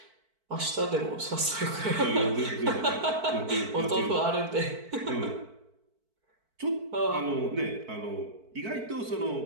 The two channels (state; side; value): late; left; 4.5 ms